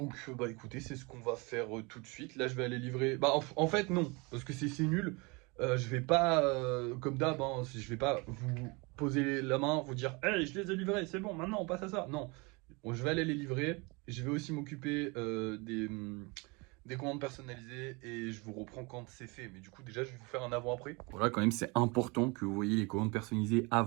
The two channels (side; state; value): left; quieter; 27.7 dB